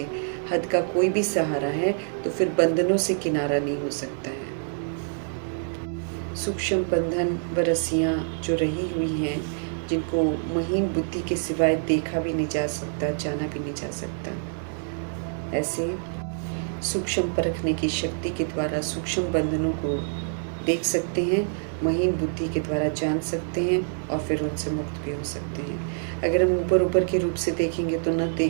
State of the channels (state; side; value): silent; left; 61 dB below the other